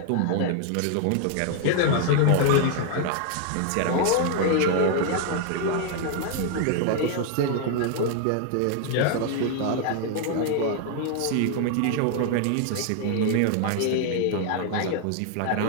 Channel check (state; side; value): different; both; correlation 0.00